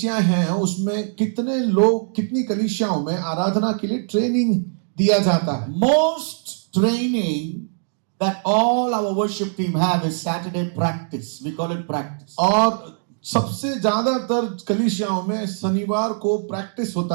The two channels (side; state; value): left; silent; digital silence